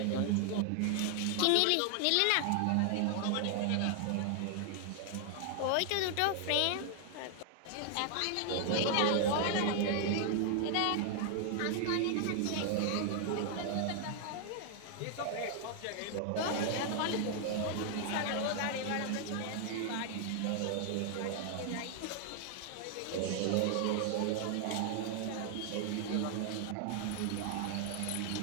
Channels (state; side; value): different; both; correlation 0.00